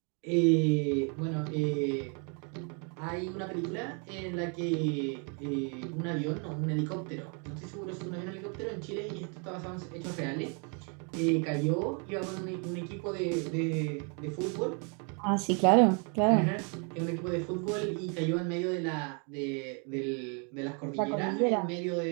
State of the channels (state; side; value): quieter; left; 36.5 dB